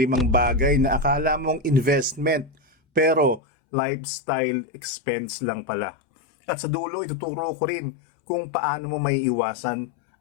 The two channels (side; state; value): right; drops out; at 3.4 s